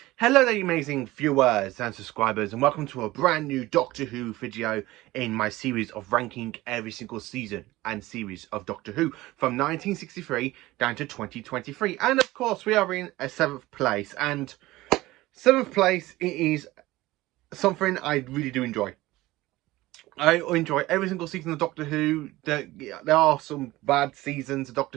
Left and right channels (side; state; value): left; quieter; 18.3 dB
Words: Hello there, you amazing viewers and subscribers, and welcome to a brand new Doctor Who video in my series of ranking every single season and series of Doctor Who from 1963 down to 2023. And of course, we are in a 7th place, and 7th place, it is something I really do enjoy. I enjoy every single season of Doctor Who. There are some bad seasons of Doctor